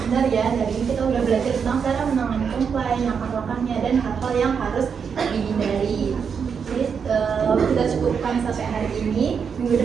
benar ya. Hari ini kita udah belajar tentang cara menangani komplain, langkah-langkahnya, dan hal-hal yang harus dihindari. Jadi kita cukupkan sampai hari ini. Minggu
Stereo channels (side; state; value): left; quieter; 6.5 dB